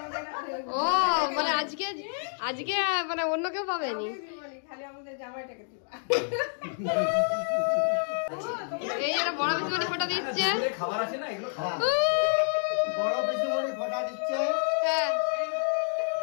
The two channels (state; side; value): silent; right; digital silence